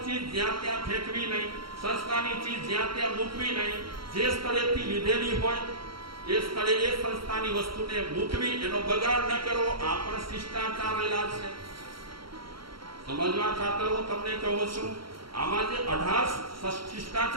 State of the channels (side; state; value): left; late; 0.74 ms